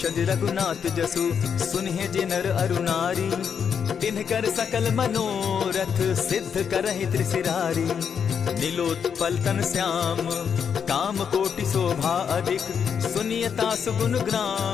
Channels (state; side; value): quieter; right; 7.2 dB